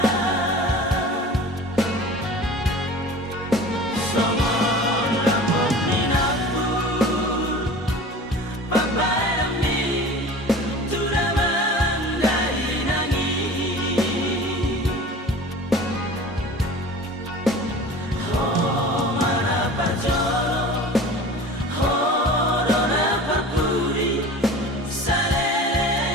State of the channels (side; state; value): both; normal; correlation 0.39